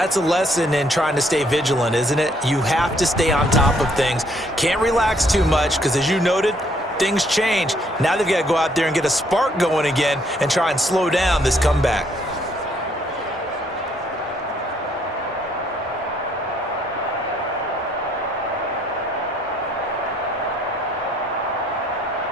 a lesson in trying to stay vigilant, isn't it? You have to stay on top of things. Can't relax too much because, as you noted, things change. Now they've got to go out there and get a spark going again and try and slow down this comeback.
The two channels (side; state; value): both; normal; correlation 0.67